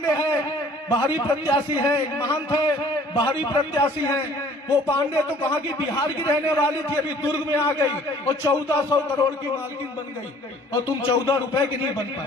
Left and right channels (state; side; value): normal; both; correlation 0.54